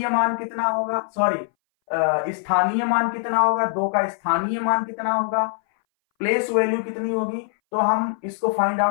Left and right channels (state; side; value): silent; right; 60 dB below the other